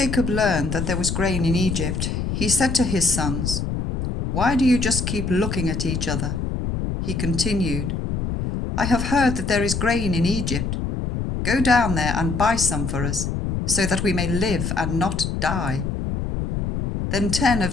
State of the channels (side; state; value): left; noise; rumble, 3 dB below the sound